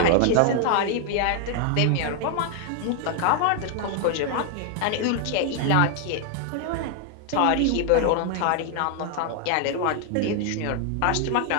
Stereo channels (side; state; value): both; different; correlation 0.00